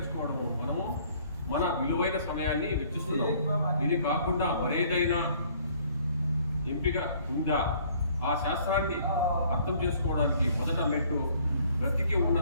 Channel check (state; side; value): inverted; both; correlation -0.58